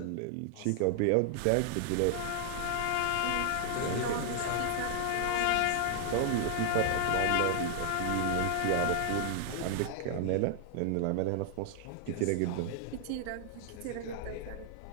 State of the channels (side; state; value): both; different; correlation 0.00